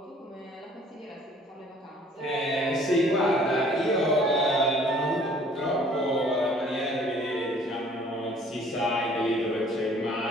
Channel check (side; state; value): both; normal; correlation 0.55